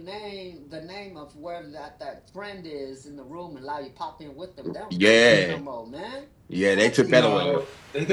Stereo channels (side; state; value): both; identical; correlation 1.00